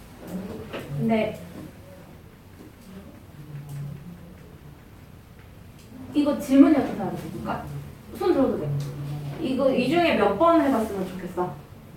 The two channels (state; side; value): identical; both; correlation 1.00